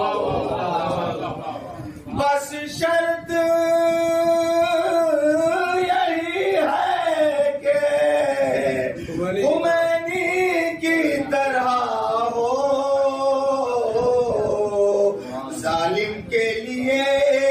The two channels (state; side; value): identical; both; correlation 1.00